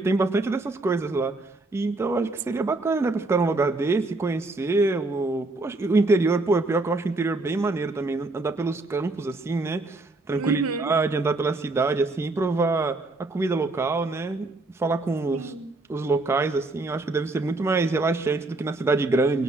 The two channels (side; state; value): left; quieter; 3.0 dB